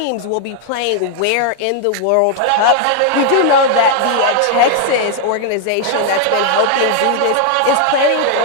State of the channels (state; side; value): different; both; correlation 0.00